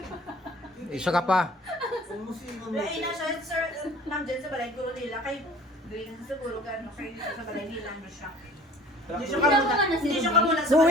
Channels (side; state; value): both; normal; correlation 0.49